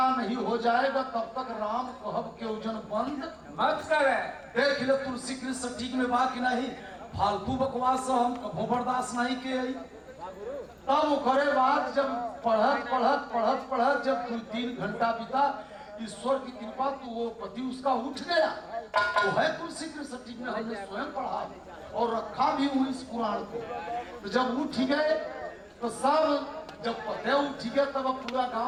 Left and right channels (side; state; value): both; identical; correlation 1.00